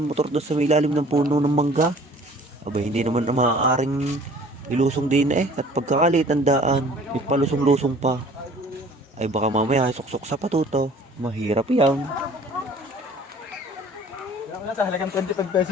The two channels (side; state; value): both; normal; correlation 0.51